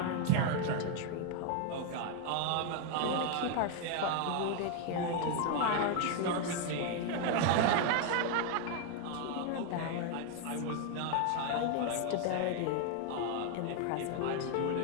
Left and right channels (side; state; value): both; different; correlation 0.01